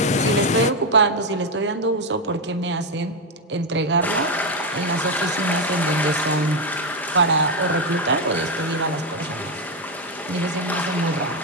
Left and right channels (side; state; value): both; normal; correlation 0.07